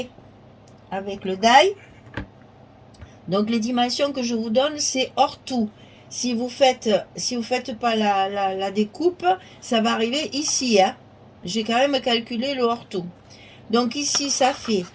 avec le die. Donc les dimensions que je vous donne, c'est hors tout. Si vous faites pas la découpe, ça va arriver ici. Hein. J'ai quand même calculé le hors tout. Donc ici, ça fait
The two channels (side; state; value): both; identical; correlation 1.00